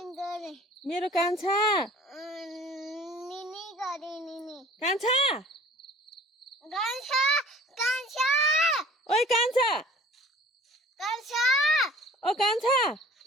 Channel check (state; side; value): normal; both; correlation 0.48